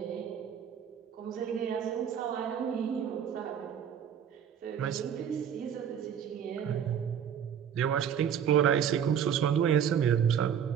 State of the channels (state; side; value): quieter; left; 8.5 dB